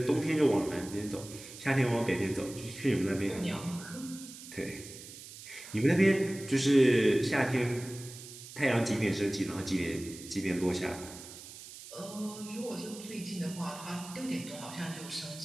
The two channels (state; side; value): noise; right; hiss, 15 dB below the sound